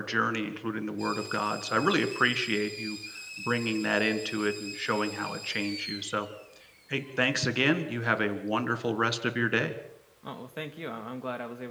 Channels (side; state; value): both; identical; correlation 1.00